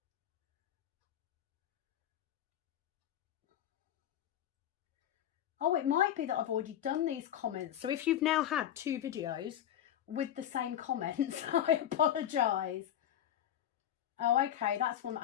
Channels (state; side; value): quieter; right; 10.8 dB